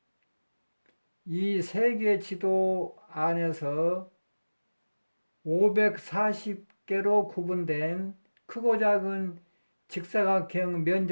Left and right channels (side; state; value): both; inverted; correlation -1.00